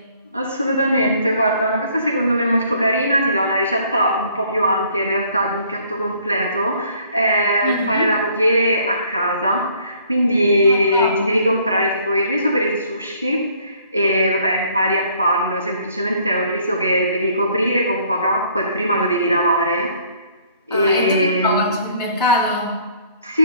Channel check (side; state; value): both; inverted; correlation -0.60